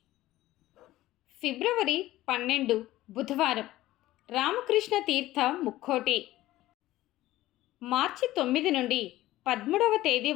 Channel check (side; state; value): right; quieter; 15.9 dB